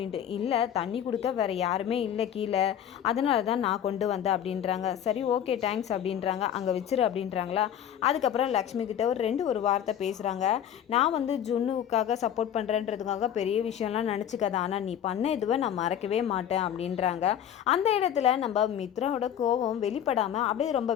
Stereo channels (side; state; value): right; quieter; 9.8 dB